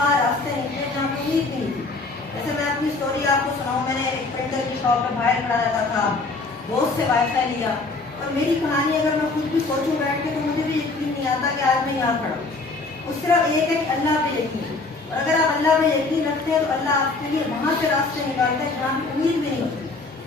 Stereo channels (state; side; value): quieter; right; 3.6 dB